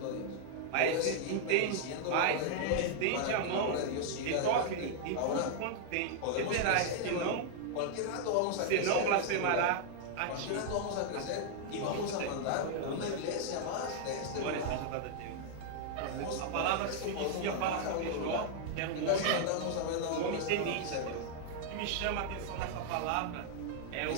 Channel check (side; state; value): both; different; correlation 0.00